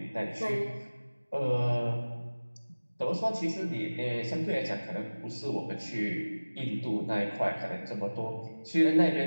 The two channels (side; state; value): both; inverted; correlation -1.00